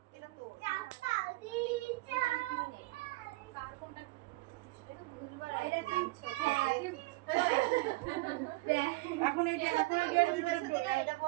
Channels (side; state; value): left; quieter; 21.9 dB